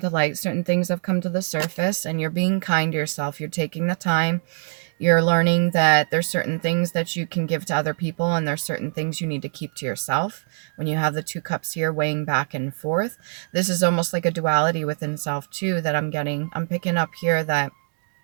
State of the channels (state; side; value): silent; left; digital silence